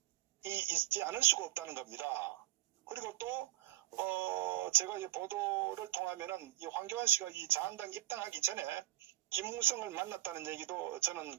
있지 않을 수가 없다는 겁니다. 그리고 또 제가 이 보도를 통하면은 이 황교안 씨가 이 자한당 입당하기 전에 김무성을 만났다는 얘기도 저는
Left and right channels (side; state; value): left; quieter; 15.1 dB